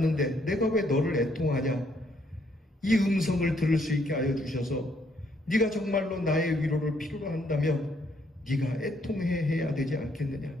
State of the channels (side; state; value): both; normal; correlation 0.70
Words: 내가 왜 너를 애통하냐? 이 음성을 들을 수 있게 하여 주셔서 네가 정말로 나의 위로를 필요로 한다면 네가 애통해야 되지 않겠느냐?